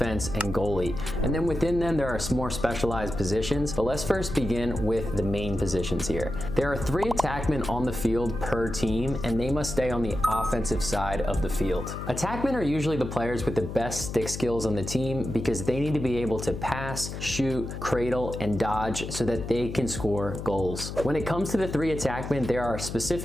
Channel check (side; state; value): left; noise; hum, 7 dB below the sound